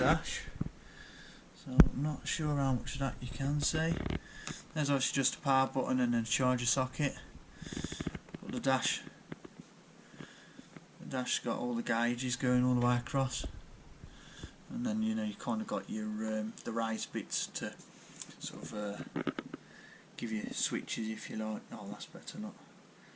So I'm not sure how much of that you can see. There's actually just a power button and then a charger socket. But the dash's got all the gauges going all the way across. And then, you know, you kind of got your the raised bits to sort of give you switches if you like. Oh, that's better, not.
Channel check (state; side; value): identical; both; correlation 1.00